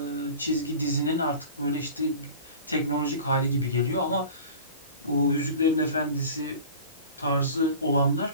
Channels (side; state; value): both; inverted; correlation -0.39